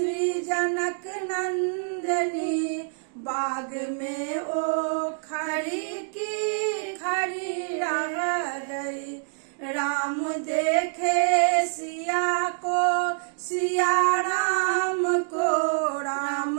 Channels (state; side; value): silent; left; digital silence